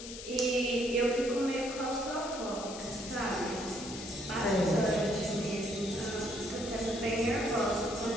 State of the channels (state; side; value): noise; left; hiss, 11 dB below the sound